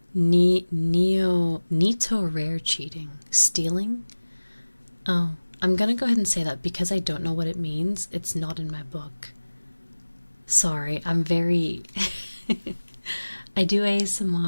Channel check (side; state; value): both; inverted; correlation -1.00